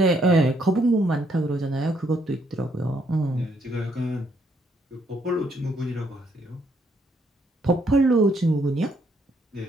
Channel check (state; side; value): normal; both; correlation 0.72